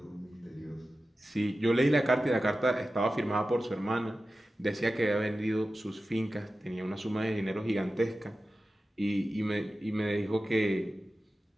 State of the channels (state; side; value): normal; both; correlation 0.94